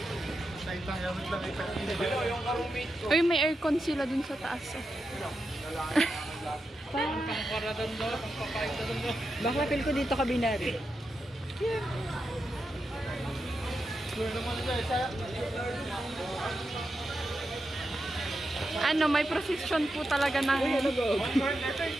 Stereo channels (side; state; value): both; normal; correlation 0.88